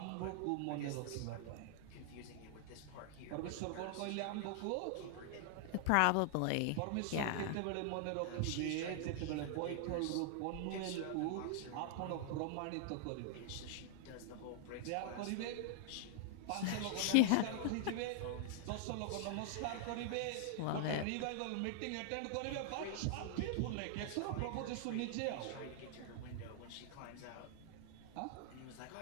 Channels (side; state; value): both; different; correlation 0.00